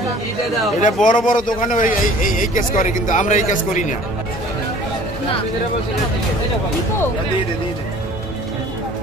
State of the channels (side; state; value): both; normal; correlation 0.49